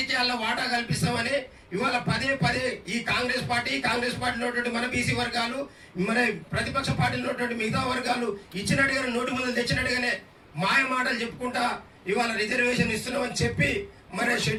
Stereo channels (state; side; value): identical; both; correlation 1.00